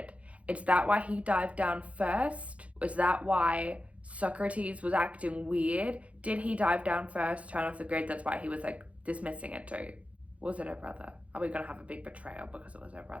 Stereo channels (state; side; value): late; left; 0.064 ms